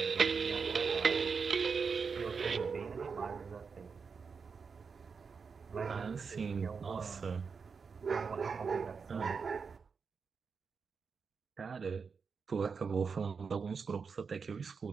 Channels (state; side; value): quieter; left; 5.5 dB